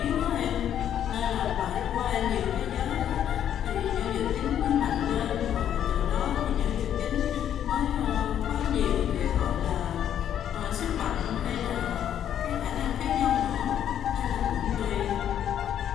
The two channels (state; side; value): quieter; right; 10.0 dB